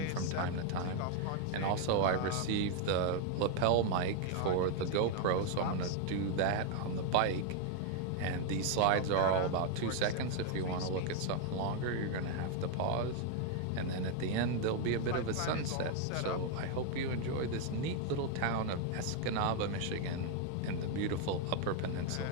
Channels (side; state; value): both; different; correlation 0.01